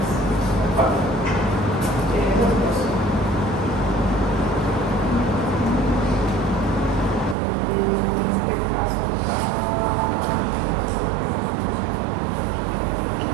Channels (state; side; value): drops out; left; at 7.4 s